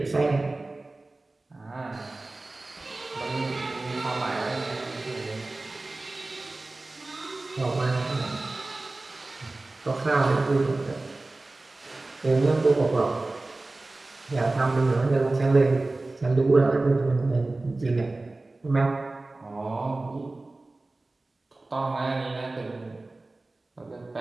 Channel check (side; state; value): left; quieter; 3.1 dB